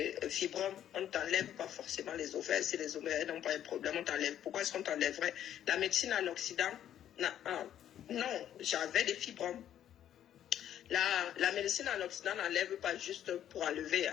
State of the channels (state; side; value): quieter; right; 10.7 dB